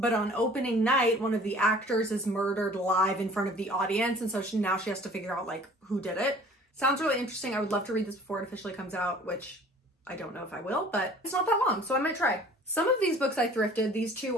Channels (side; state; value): both; normal; correlation 0.49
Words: on opening night, one of the actors is murdered live in front of the audience. And so now she has to figure out like who did it. Sounds really interesting. I would love to read this before it officially comes out, which I don't know if I will, but it's not that long, so I might try. Some of these books I thrifted. These two